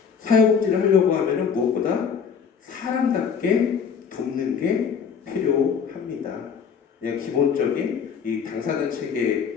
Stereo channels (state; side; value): quieter; right; 6.6 dB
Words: 사회복지를 하려고 하면은 무엇보다 사람답게 돕는 게 필요합니다. 그냥 기본적인 이 당사자